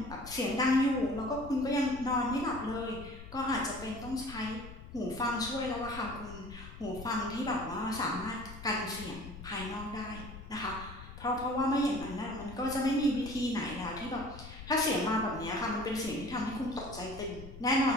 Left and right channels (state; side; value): noise; left; rumble, 13 dB below the sound